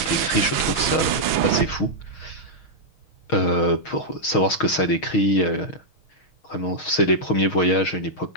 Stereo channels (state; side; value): late; right; 6.4 ms